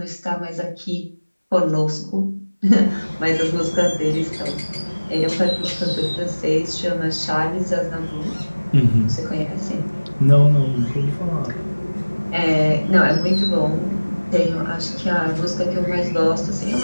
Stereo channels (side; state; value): both; inverted; correlation -1.00